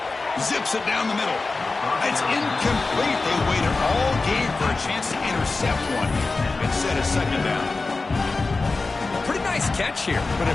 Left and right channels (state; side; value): quieter; right; 3.7 dB